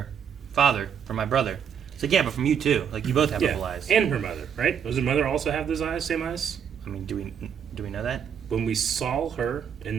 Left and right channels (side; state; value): left; quieter; 7.9 dB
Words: father, from my brother. It's like, yeah, but from you too. Like, you both have purple eyes. And her mother, right? Does her mother also have those eyes, same eyes? I mean, do we know that? When we saw her